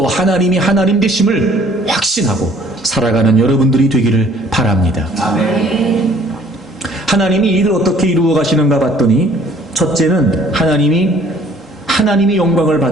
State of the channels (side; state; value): both; normal; correlation 0.57